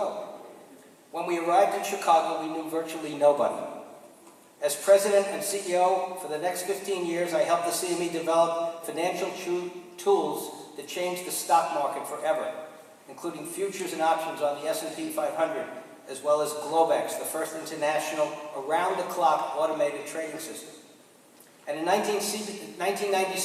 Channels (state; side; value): identical; both; correlation 1.00